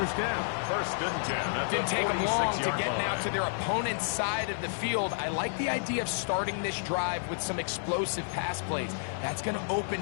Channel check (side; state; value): right; silent; 57 dB below the other